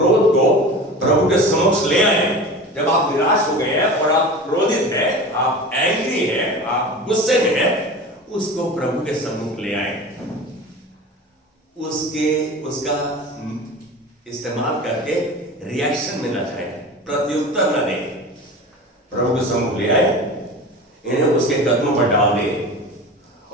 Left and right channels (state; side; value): normal; both; correlation 0.33